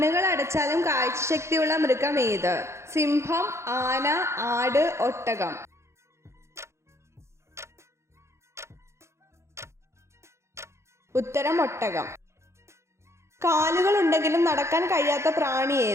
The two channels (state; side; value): late; left; 0.13 ms